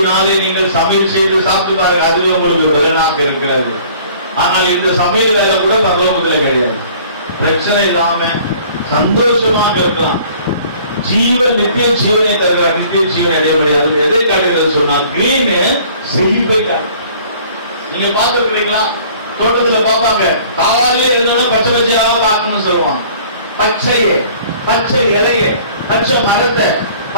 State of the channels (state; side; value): inverted; both; correlation -0.52